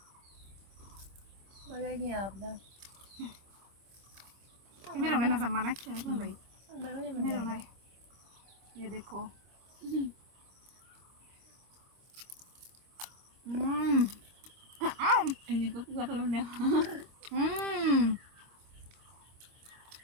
मेरे होने ना जमाना क्या है भाई मेरे होना है। ये देखो Ini có gật luôn nè.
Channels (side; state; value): left; late; 25 ms